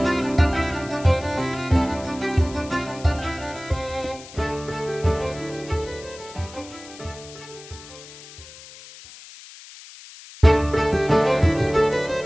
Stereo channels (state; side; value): noise; left; hiss, 18 dB below the sound